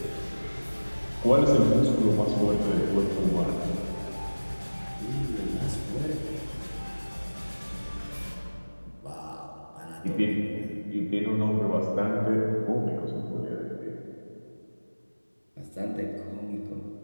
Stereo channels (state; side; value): inverted; both; correlation -1.00